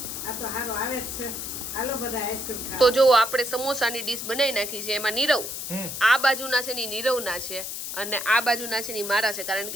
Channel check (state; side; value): noise; left; hiss, 6 dB below the sound